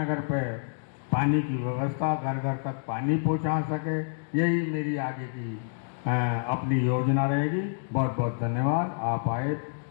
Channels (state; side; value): silent; right; digital silence